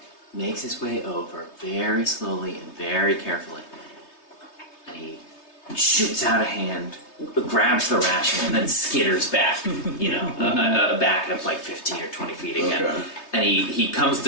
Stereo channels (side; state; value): right; late; 3.3 ms